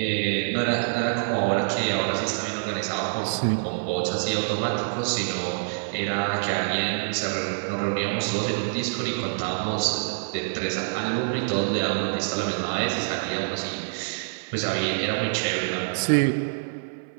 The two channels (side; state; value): left; silent; 56 dB below the other